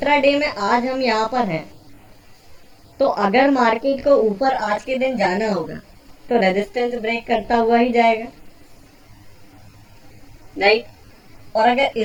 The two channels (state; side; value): identical; both; correlation 1.00